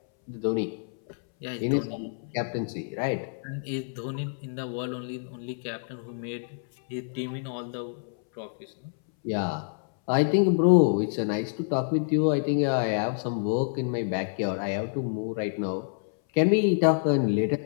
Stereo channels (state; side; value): silent; right; 60 dB below the other